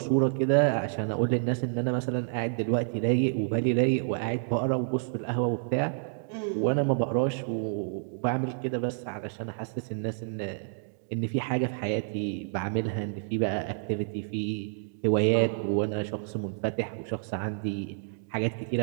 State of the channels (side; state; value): left; silent; digital silence